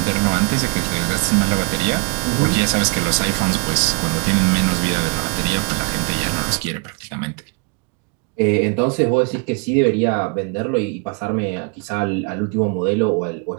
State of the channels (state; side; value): quieter; left; 35.8 dB